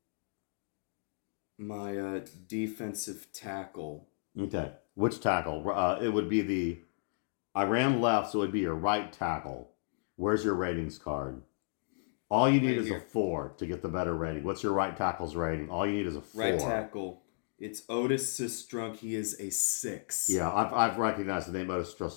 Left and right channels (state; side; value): silent; right; digital silence